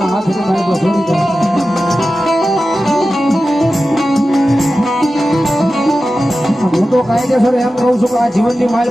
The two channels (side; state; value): both; normal; correlation 0.93